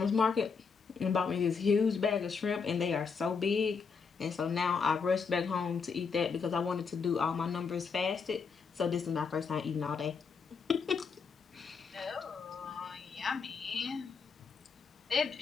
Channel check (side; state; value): right; quieter; 5.5 dB